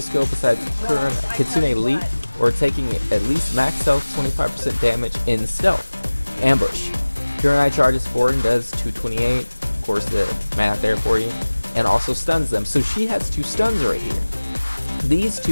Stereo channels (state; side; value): inverted; both; correlation -1.00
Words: skill besides Kitsune Leap, or taking at least max health 25% damage in stealth. Ambush. Kurenai charges forward and does 228, of course the math there for you, and also stuns them. So she has 2 stuns right here. These